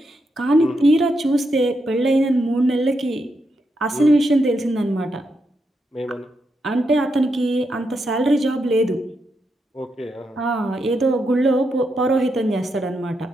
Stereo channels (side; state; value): both; normal; correlation 0.83